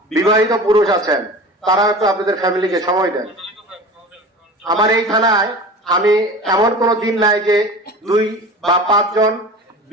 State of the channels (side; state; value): both; normal; correlation 0.36